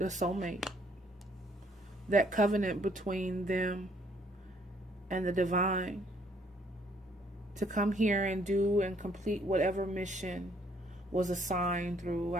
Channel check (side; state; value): both; normal; correlation 0.65